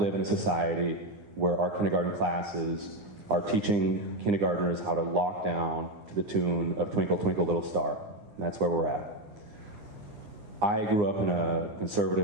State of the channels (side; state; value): left; late; 9.8 ms